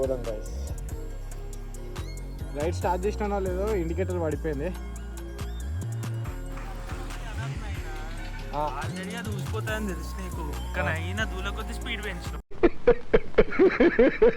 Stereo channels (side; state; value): both; identical; correlation 1.00